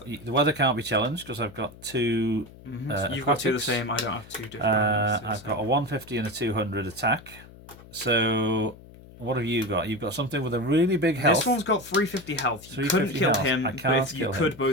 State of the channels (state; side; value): noise; left; hum, 20 dB below the sound